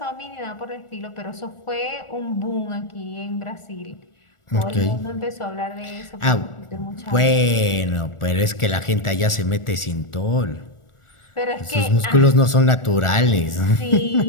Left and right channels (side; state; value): right; late; 1.4 ms